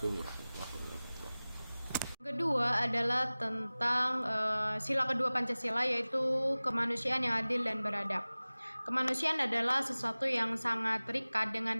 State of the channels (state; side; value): inverted; both; correlation -0.99